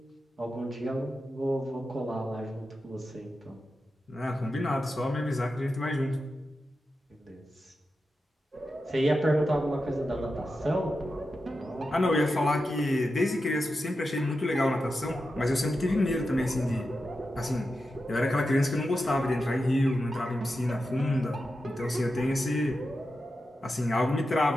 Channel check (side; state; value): both; normal; correlation 0.90